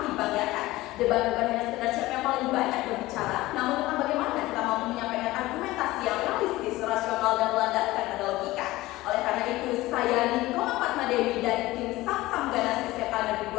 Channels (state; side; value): quieter; right; 18.2 dB